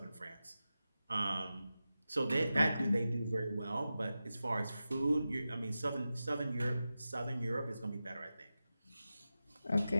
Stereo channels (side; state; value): both; inverted; correlation -0.93